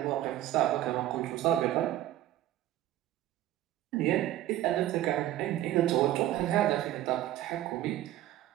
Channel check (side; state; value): left; quieter; 13.8 dB